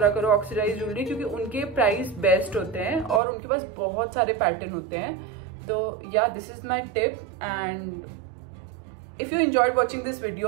करो ऑक्सीडाइज ज्वेलरी, क्योंकि उनके प्राइस बेस्ट होते हैं और उनके पास बहुत सारे पैटर्न होते हैं. तो या this is my tip, and if you enjoyed watching this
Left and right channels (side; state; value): left; drops out; at 3.2 s